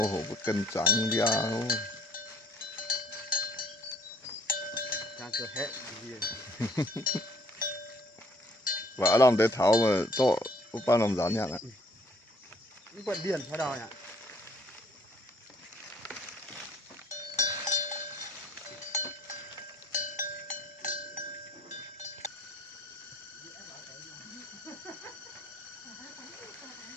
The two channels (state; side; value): normal; both; correlation 0.60